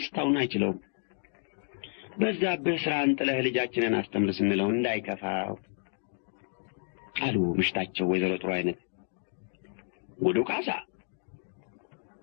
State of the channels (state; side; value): silent; right; digital silence